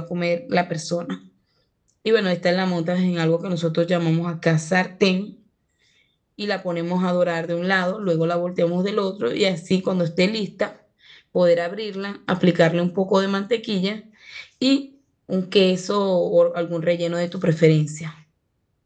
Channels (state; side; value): identical; both; correlation 1.00